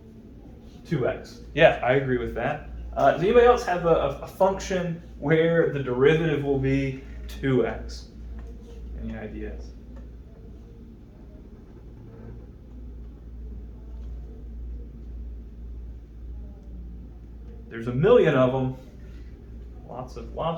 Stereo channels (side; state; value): both; identical; correlation 1.00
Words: 2x. Yeah, I agree with that. Does anybody else have a function where the derivative will be 2x? Any ideas? There's a million of them.